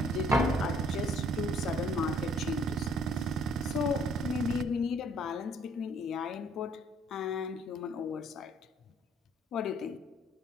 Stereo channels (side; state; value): both; normal; correlation 0.61